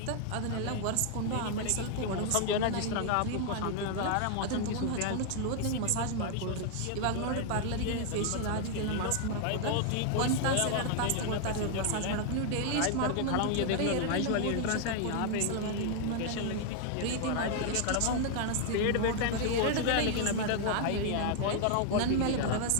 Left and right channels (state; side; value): different; both; correlation 0.00